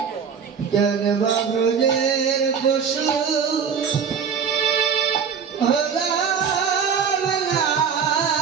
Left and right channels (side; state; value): left; quieter; 6.8 dB